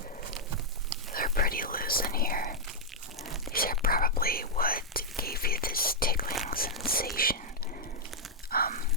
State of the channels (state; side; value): normal; both; correlation -0.06